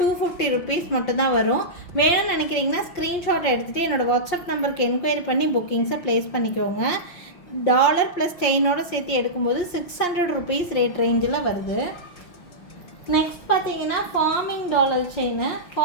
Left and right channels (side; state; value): right; late; 5.6 ms